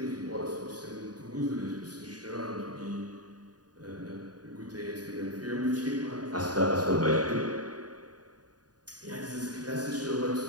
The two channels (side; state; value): left; late; 0.69 ms